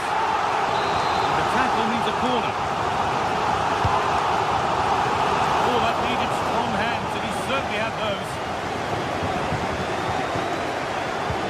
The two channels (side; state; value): both; identical; correlation 1.00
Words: The tackle needs a corner. Oh, that needed strong hands, and he certainly had those.